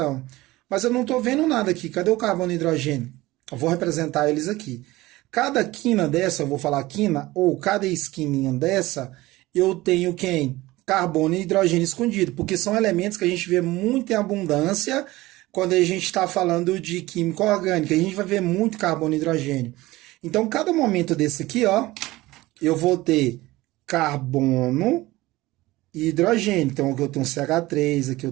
Mas eu não estou vendo nada aqui. Cadê o carbono e hidrogênio? Eu vou representar eles aqui. Cada quina dessa, eu vou falar quina, ou cada esquininha dessa, eu tenho quem? Carbono e hidrogênio escondido. Porque são elementos que a gente vê muito em abundância quando a gente está falando de química orgânica. A gente vai ver muito carbono e hidrogênio. Então, cada momento desse aqui, ó, eu vou ter carbono e hidrogênio. Então, aqui eu tenho um CH3, aqui eu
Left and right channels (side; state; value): left; quieter; 18.8 dB